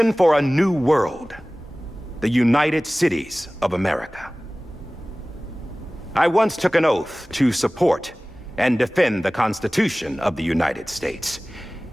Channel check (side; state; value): both; normal; correlation 0.98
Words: for a new world, the United Cities of America. I once took an oath to support and defend the Constitution of the United States.